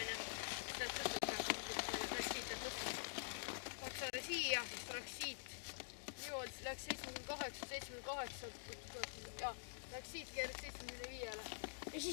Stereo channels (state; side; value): silent; right; digital silence